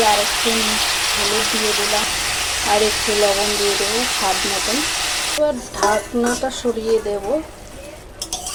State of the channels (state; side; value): identical; both; correlation 1.00